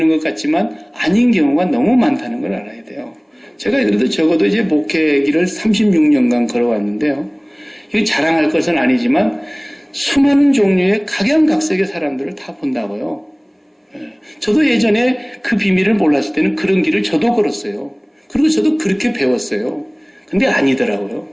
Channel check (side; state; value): both; identical; correlation 1.00